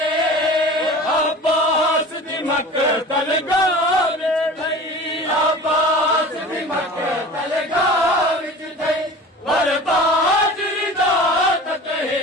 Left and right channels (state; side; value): normal; both; correlation 0.39